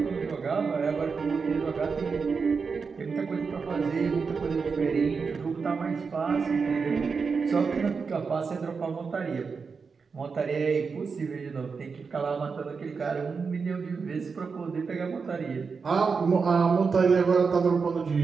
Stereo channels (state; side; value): quieter; left; 5.2 dB